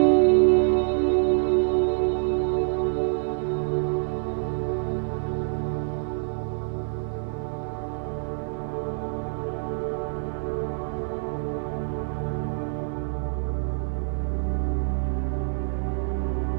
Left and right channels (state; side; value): silent; left; digital silence